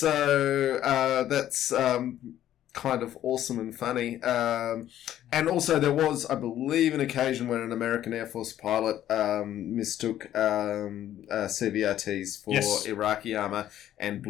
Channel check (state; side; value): quieter; right; 12.0 dB